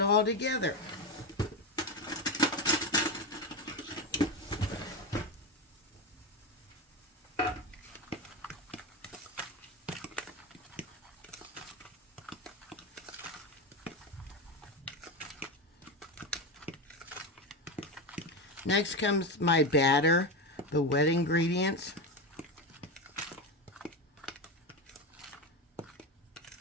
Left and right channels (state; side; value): normal; both; correlation 0.17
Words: together. Next comes my batter, the wet ingredients.